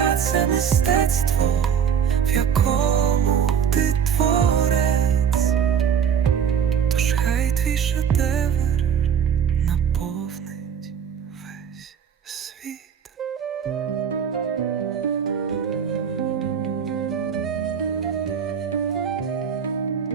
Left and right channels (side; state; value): left; quieter; 7.8 dB